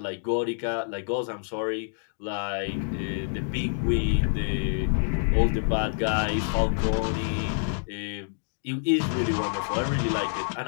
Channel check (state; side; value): silent; right; digital silence